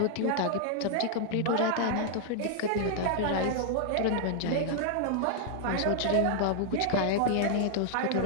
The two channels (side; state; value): both; different; correlation -0.01